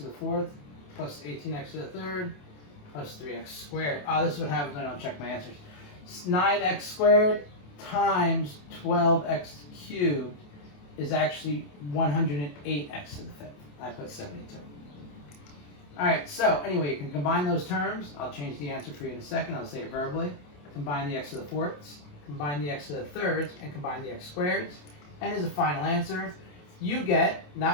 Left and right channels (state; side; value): late; right; 28 ms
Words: the 4th. Plus 18x to the 3rd. Plus 3x squared. Oh, this is what happens when I don't check my answers. 9x squared times 12x cubed is actually 108x to the 5th. I put 72. Alright, so anyway, you can combine those terms. I'll change the answer for you in a second. I'll say it verbally. Combine the x to the 4ths, combine the x to the 3rds, and combine the x squareds. And as a final answer, you get